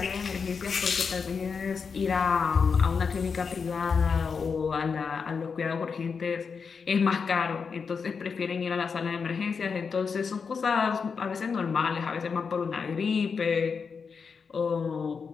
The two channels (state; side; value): quieter; right; 5.6 dB